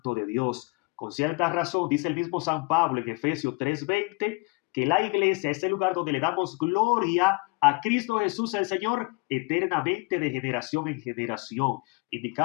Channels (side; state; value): right; quieter; 28.0 dB